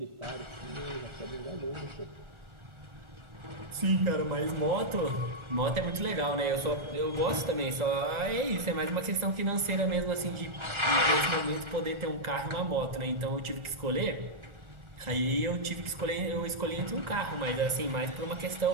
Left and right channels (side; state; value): left; late; 1.4 ms